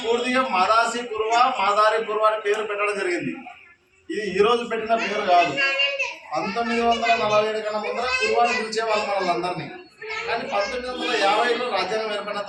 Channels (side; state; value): both; identical; correlation 1.00